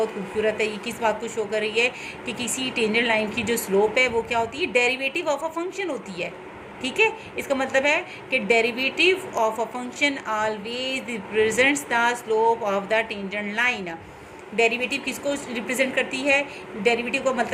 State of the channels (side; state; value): both; identical; correlation 1.00